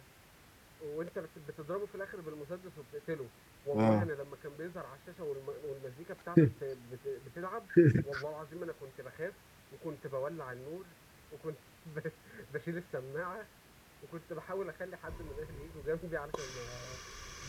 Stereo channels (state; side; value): identical; both; correlation 1.00